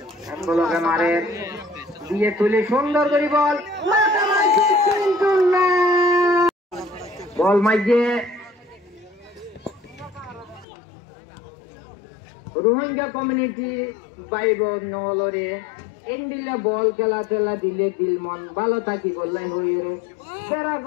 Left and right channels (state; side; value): drops out; right; at 10.7 s